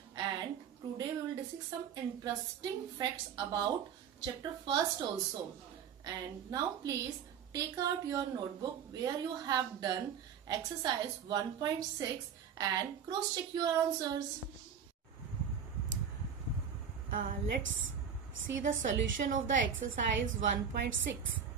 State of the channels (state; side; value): quieter; left; 7.5 dB